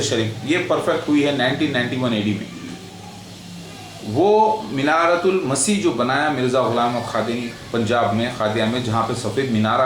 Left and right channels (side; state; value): both; identical; correlation 1.00